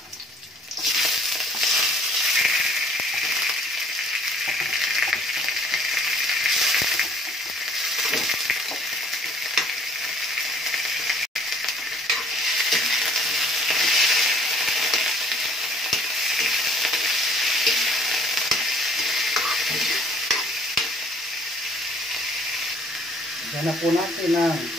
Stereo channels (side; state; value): both; normal; correlation 0.57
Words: Lagyan na po natin ng